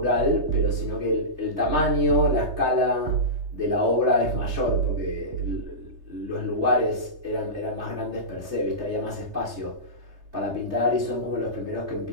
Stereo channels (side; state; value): left; late; 3.3 ms